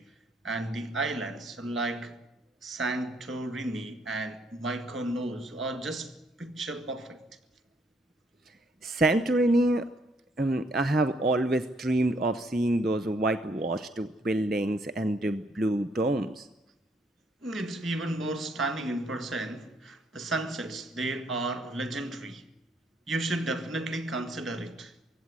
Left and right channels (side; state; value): both; normal; correlation 0.69